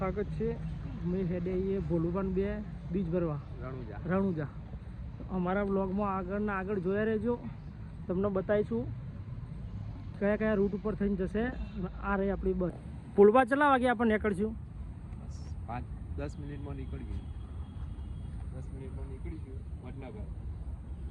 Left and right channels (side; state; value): both; identical; correlation 1.00